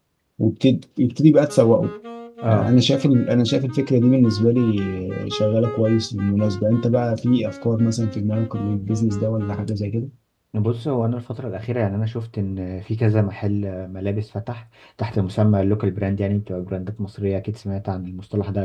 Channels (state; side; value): identical; both; correlation 1.00